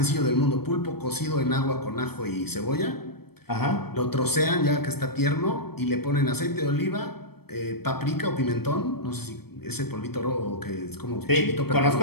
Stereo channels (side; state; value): right; late; 0.96 ms